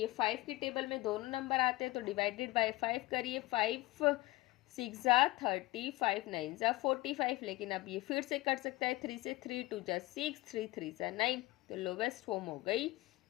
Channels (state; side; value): quieter; right; 18.9 dB